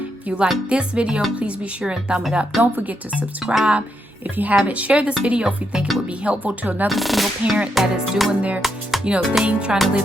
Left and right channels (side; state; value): both; normal; correlation 0.81